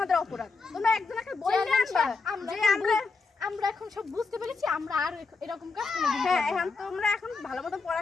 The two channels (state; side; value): quieter; right; 4.3 dB